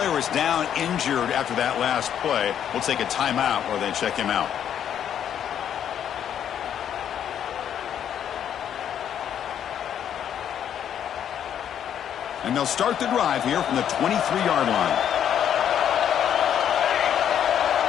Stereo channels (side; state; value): right; quieter; 9.4 dB